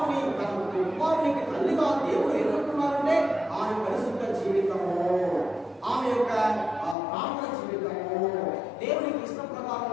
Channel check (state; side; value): drops out; right; at 7.0 s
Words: తన కుమారునికి తల్లిగా దేవుడు ఎన్నుకున్నారంటే ఆమె పరిశుద్ధ జీవితము, ఆమె యొక్క ప్రార్థన జీవితము దేవునికి ఇష్ట